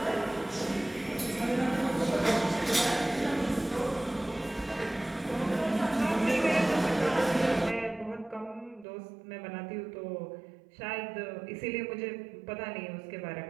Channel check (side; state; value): left; drops out; at 8.8 s